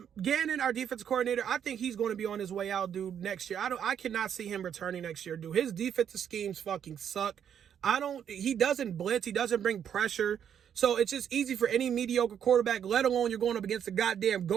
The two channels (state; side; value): quieter; left; 8.8 dB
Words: our defensive coordinator, I think he's going to be on his way out, dude, next year. I cannot see him returning next year, dude. His defensive schemes fucking suck. He doesn't blitz. He doesn't bring pressure. So it's just easy for any mediocre quarterback, let alone you're going up against the goddamn